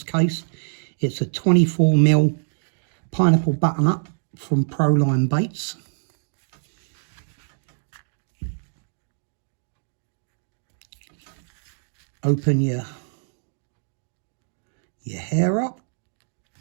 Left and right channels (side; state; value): left; silent; digital silence